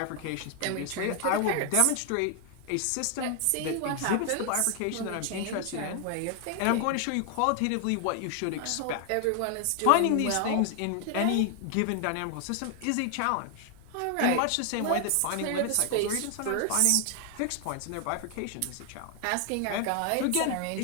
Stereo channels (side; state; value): both; different; correlation 0.00